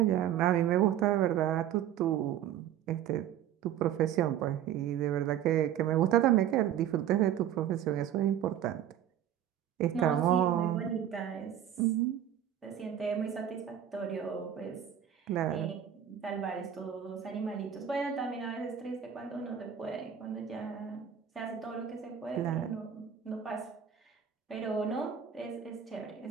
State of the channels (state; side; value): quieter; left; 10.0 dB